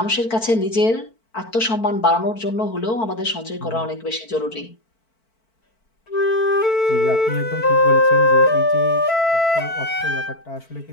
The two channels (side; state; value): right; late; 4.5 ms